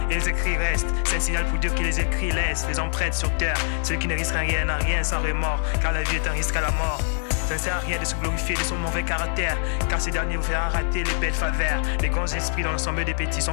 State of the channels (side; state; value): right; silent; digital silence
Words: et les écrits restent, c'est un signal pour Dieu que les écrits laissent les empreintes sur terre. Celui qui ne risque rien n'a rien sans remords, car la vie est un risque à la mort. Ça ne sert à rien de se glorifier de son mauvais caractère, car ces derniers vous feront rater les belles faveurs. Les grands esprits dans l'ensemble des petits sont